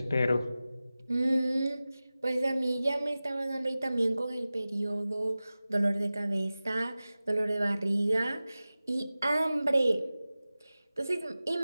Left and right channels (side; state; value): both; inverted; correlation -0.96